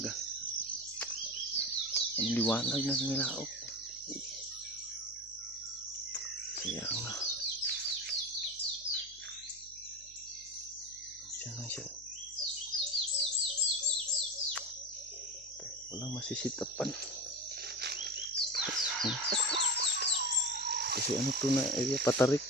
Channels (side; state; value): left; noise; hum, 27 dB below the sound